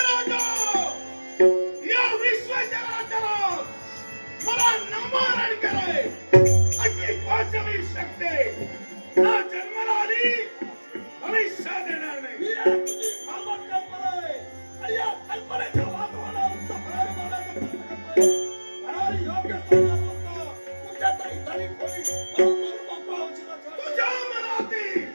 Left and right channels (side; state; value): both; inverted; correlation -1.00